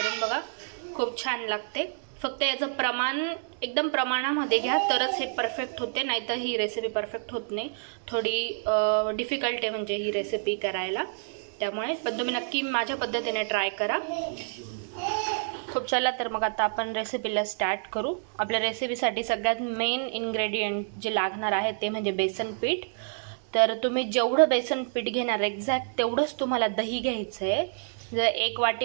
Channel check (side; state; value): left; silent; 59 dB below the other